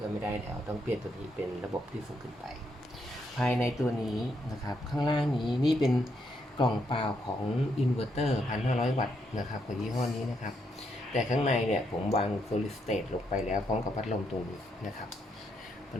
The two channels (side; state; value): both; normal; correlation 0.77